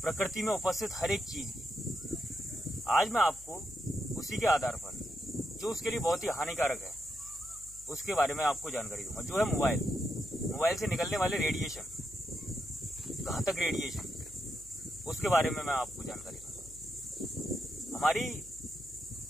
प्रकृति में उपस्थित हर एक चीज की। आज मैं आपको उसी के आधार पर जो उसके लिए बहुत ही हानिकारक है उसके बारे में आपको जानकारी दूंगा, जो है मोबाइल से निकलने वाले रेडिएशन, घातक रेडिएशन, उसके बारे में मैं आपको जानकारी दूंगा। हमारी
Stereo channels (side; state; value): left; noise; hum, 21 dB below the sound